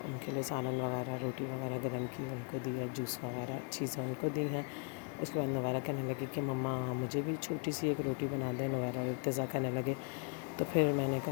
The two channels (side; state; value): right; quieter; 36.3 dB